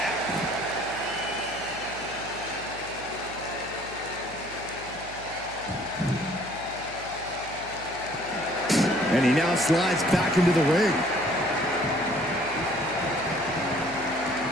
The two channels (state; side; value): noise; right; hum, 17 dB below the sound